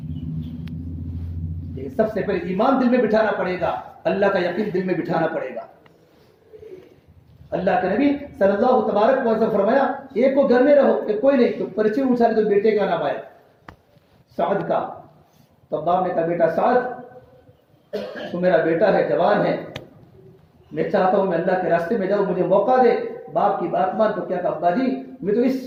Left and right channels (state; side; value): identical; both; correlation 1.00